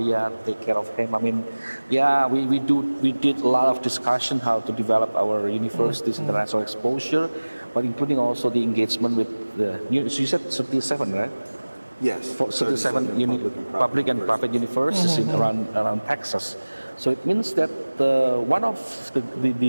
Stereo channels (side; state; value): both; inverted; correlation -1.00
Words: take care of him. I mean, we did a lot of discussion how to develop our university's international exposure, but including also the engagement with you said 37, right? Yes. For 37 public and private universities in around Texas. So it means that one of